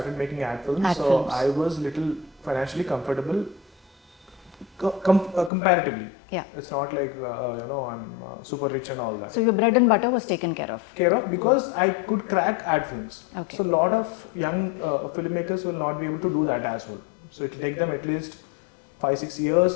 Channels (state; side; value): drops out; right; at 5.5 s